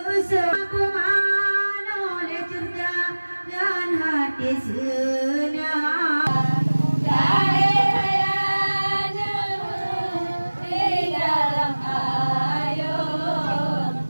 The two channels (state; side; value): inverted; both; correlation -1.00